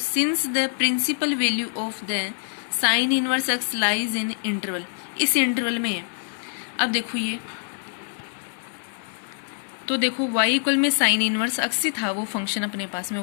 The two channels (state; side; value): silent; right; digital silence